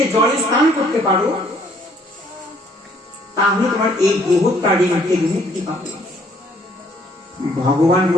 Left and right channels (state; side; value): normal; both; correlation 0.63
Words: জলে স্নান করতে পারো, তাহলে তোমার এই গোহত্যার ঋণ থেকে মুক্তি পাবে। ভগবান